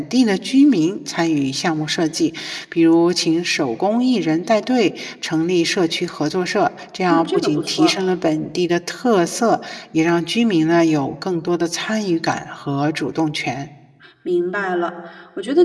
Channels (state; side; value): identical; both; correlation 1.00